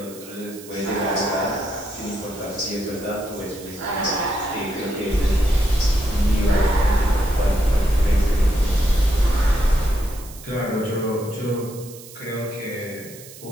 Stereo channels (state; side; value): noise; right; hiss, 18 dB below the sound